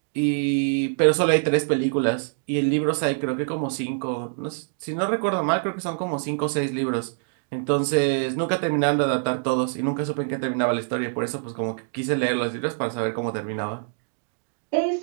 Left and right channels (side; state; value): left; silent; digital silence